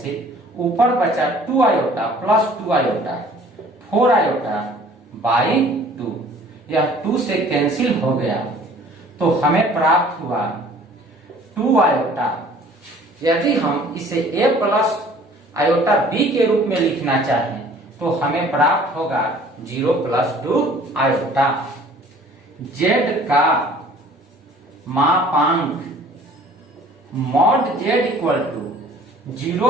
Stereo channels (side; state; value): both; normal; correlation 0.52